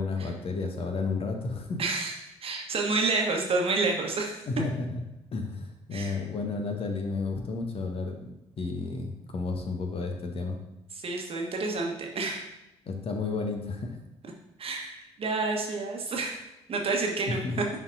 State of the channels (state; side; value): normal; both; correlation 0.44